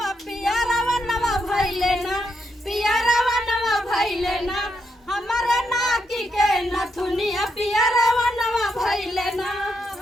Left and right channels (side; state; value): both; normal; correlation 0.80